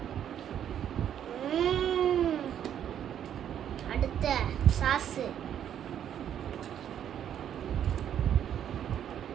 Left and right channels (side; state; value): left; quieter; 9.8 dB